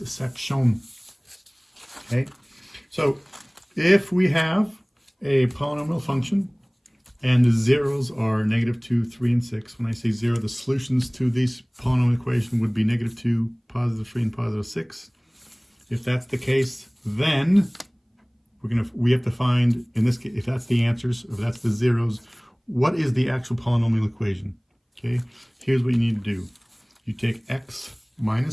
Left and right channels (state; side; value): identical; both; correlation 1.00